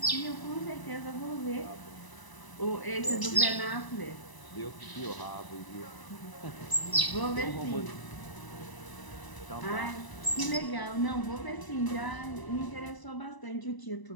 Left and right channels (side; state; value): right; late; 1.0 ms